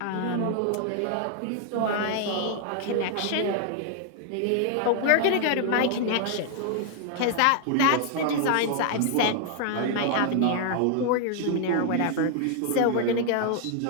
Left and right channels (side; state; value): both; different; correlation 0.00